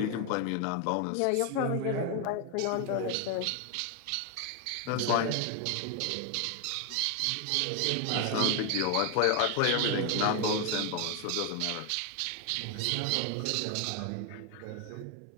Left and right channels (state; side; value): different; both; correlation 0.01